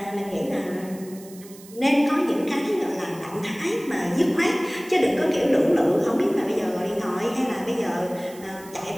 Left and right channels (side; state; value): right; noise; hiss, 20 dB below the sound